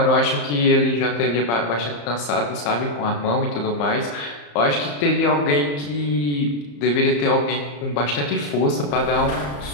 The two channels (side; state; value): right; late; 34 ms